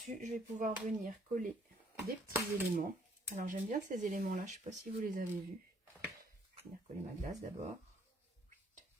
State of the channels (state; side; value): normal; both; correlation 0.65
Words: je vais pouvoir venir coller des petits éléments. Alors, j'aime bien ces éléments-là. Je ne sais pas si vous les avez vus. Je vais venir coller ma glace d'abord.